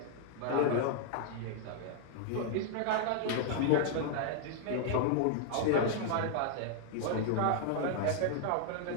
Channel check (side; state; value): both; different; correlation 0.00